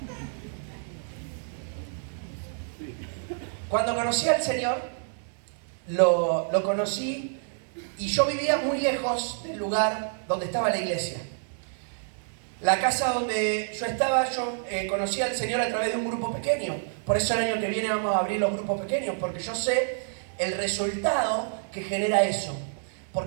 Cuando conocí al Señor, lo conocí y yo vivía muy lejos del lugar donde estaba la iglesia. La casa donde yo estaba, yo conocí al Señor a través de un grupo pequeño. Por eso el año que viene vamos a abrir los grupos pequeños, porque yo sé el resultado que genera eso.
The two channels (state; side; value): silent; left; 59 dB below the other